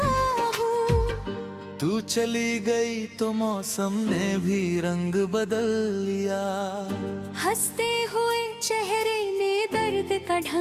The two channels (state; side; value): identical; both; correlation 1.00